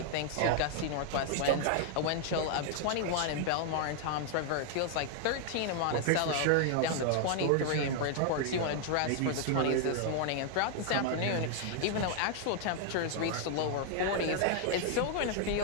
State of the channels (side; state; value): both; different; correlation 0.00